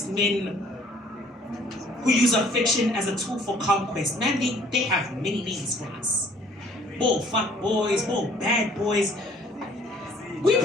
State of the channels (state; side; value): normal; both; correlation 0.57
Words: men who use affection as a tool for conquest. Man, they have many names for us. More fuck boys, more bad boys. We